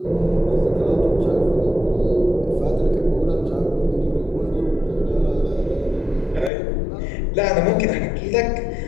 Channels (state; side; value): drops out; right; at 6.5 s